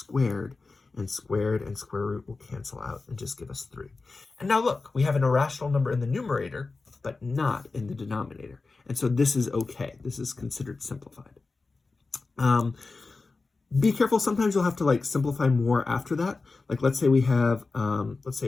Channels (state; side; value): quieter; right; 3.9 dB